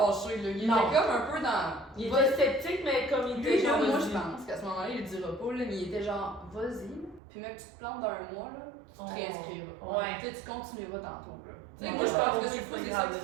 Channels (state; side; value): drops out; left; at 7.2 s